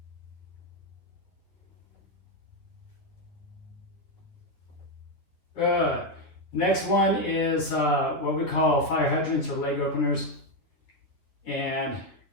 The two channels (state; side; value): late; right; 10 ms